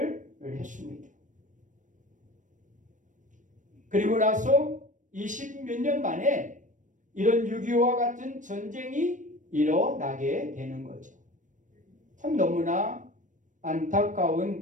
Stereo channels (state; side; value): late; left; 0.37 ms